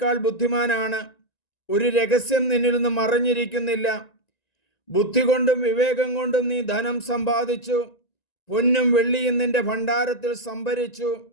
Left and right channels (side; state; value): right; late; 1.9 ms